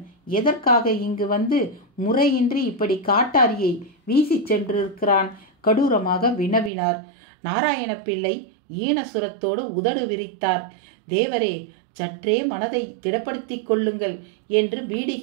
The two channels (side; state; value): left; drops out; at 6.7 s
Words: எதற்காக இங்கு வந்து முறையின்றி இப்படி காட்டாரியை வீசி சென்றிருக்கிறான்? கடூரமாக வினவினார். நாராயண பிள்ளை ஈனசுரத்தோடு உதடு விரித்தார். தேவரே, சற்றே மனதை திடப்படுத்தி கொள்ளுங்கள் என்று